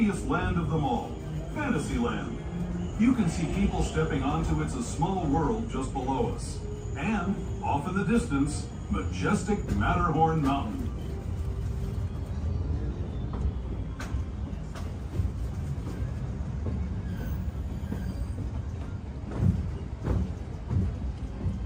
land of them all, Fantasyland. You can see people stepping onto It's a Small World just below us. And, off in the distance, majestic Matterhorn Mountain.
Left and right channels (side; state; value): both; identical; correlation 1.00